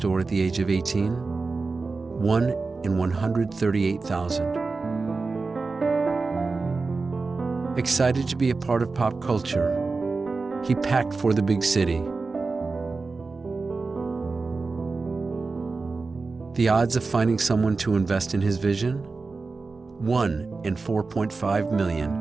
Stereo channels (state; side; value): quieter; left; 4.0 dB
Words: at the age of 18? 1 in 138,000. Excited to be a part of pop culture, he packed for the big city. The odds of finding someone to invest in his vision? 1 in 4.5 million.